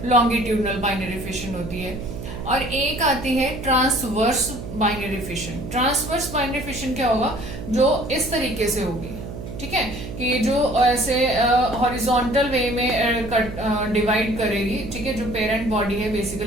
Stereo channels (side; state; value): right; noise; hum, 9 dB below the sound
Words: लॉन्गिट्यूडनल बाइनरी फिशन होती है। और एक आती है transverse binary fission. Transverse binary fission क्या होगा, जो इस तरीके से होगी, ठीक है, कि जो ऐसे हॉरिजॉन्टल वे में डिवाइड करेगी, ठीक है, जो पेरेंट बॉडी है